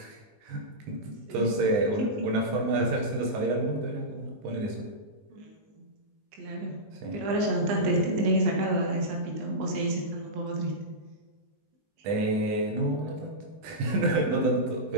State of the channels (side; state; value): left; late; 19 ms